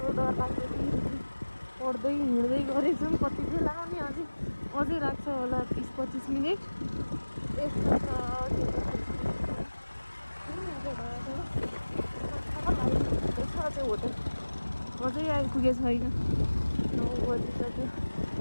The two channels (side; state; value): both; inverted; correlation -1.00